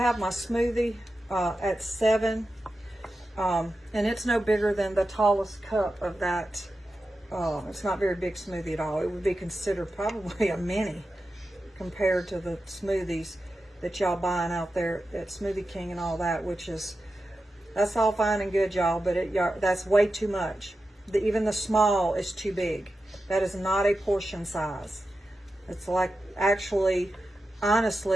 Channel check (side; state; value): both; normal; correlation 0.91